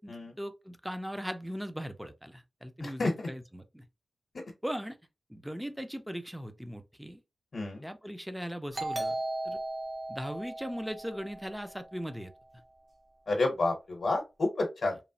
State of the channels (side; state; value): both; normal; correlation 0.96